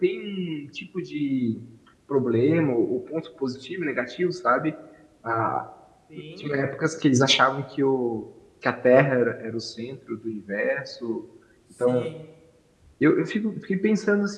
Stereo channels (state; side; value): identical; both; correlation 1.00